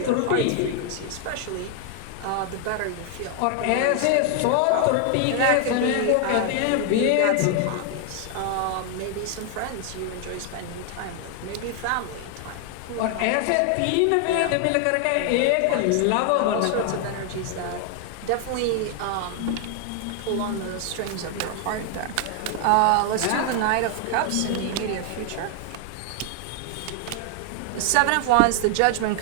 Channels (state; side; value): different; both; correlation 0.00